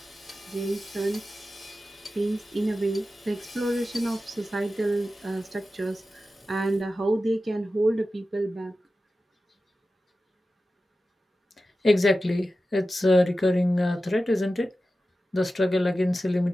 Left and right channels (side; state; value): both; normal; correlation 0.93